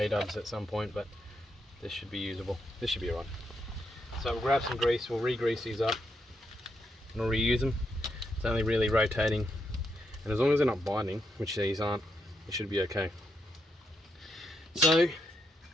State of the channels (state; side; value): normal; both; correlation 0.80